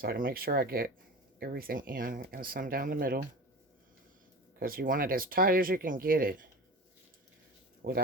I can make sure I get everything in and some down the middle. Because you want it as tight as you can get it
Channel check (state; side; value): normal; both; correlation 0.32